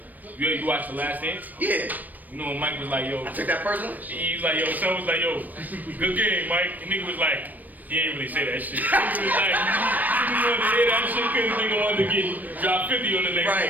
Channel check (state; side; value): late; left; 0.084 ms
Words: you watch The Last Dance? Yeah. You know when Mike was like, yo. I took that personally? He was like, yo, son was like, yo, good game, Mike. And nigga was like, he ain't really say that shit. Nigga was like, nigga wanted to hear that shit because nigga wanted to get drop 50 on the next